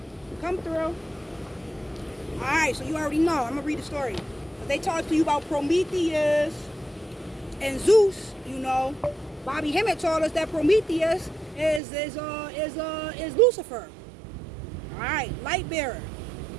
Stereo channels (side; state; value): left; drops out; at 11.8 s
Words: come through. Alright, so you already know. I'm gonna read the story. They talk to you about Prometheus and Zeus, you know. Bobby Hemmett told us that Prometheus is Lucifer. Alright, light bearer.